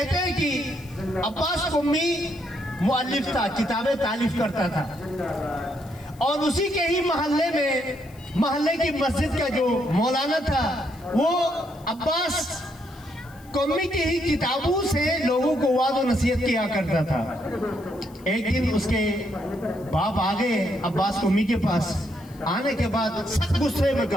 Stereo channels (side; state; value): left; noise; hiss, 26 dB below the sound